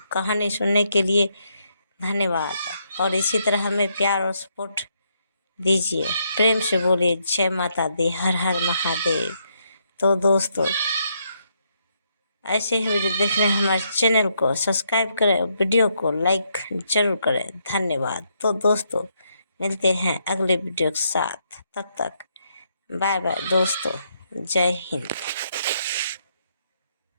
सुनने के लिए धन्यवाद। और इसी तरह हमें प्यार और सपोर्ट दीजिए। प्रेम से बोलिए जय माता दी, हर हर महादेव। तो दोस्तों, ऐसे ही वीडियो देखने हमारे चैनल को सब्सक्राइब करें, वीडियो को लाइक जरूर करें। धन्यवाद। तो दोस्तों, मिलते हैं अगले वीडियो के साथ। तब तक बाय बाय दोस्तों। जय हिंद।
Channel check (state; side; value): inverted; both; correlation -0.76